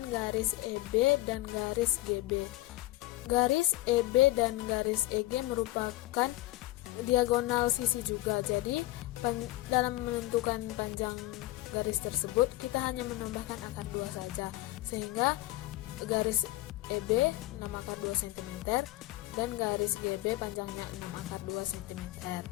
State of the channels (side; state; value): right; quieter; 17.8 dB